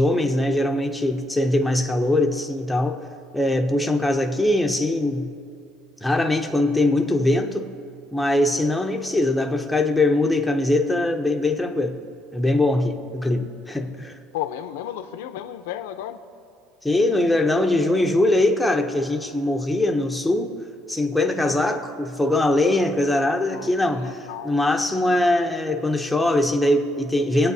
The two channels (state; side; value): normal; both; correlation 0.80